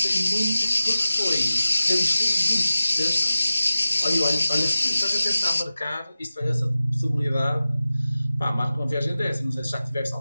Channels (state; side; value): inverted; both; correlation -0.94